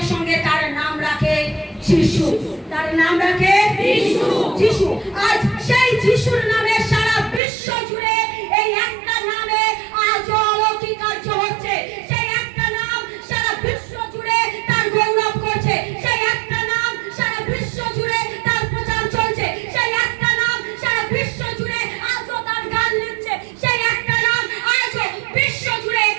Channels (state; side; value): drops out; left; at 7.4 s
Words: সঙ্গে তার নাম রাখে যিশু। তার নাম রাখে যিশু, যিশু। আজ সেই যিশুর নামে সারা বিশ্ব জুড়ে এই একটা নামে আজ অলৌকিক কার্য হচ্ছে। সেই একটা নাম সারা বিশ্ব জুড়ে তার গৌরব করছে। সেই একটা নাম সারা বিশ্ব জুড়ে তার প্রচার চলছে। সেই একটা নাম সারা বিশ্ব জুড়ে আজও তার গান লিখছে। সেই একটা নাম আজও বিশ্ব জুড়ে